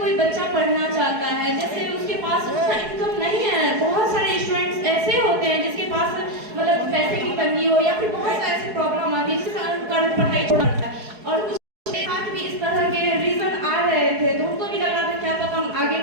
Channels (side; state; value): left; late; 4.7 ms